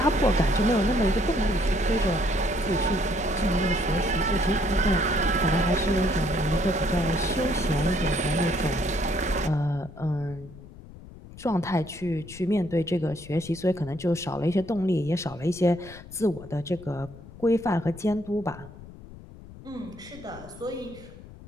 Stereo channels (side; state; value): left; noise; rumble, 17 dB below the sound